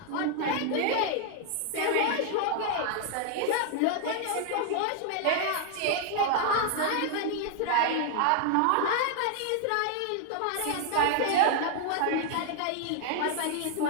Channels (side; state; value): both; different; correlation 0.00